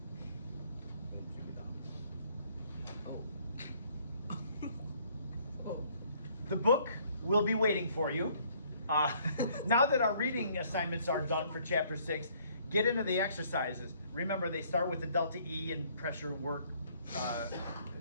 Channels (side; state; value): both; inverted; correlation -0.63